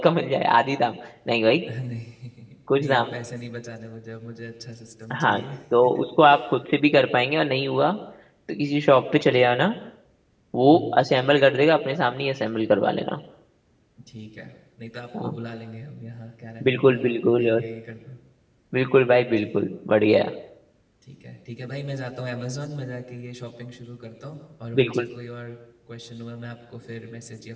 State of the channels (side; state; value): both; identical; correlation 1.00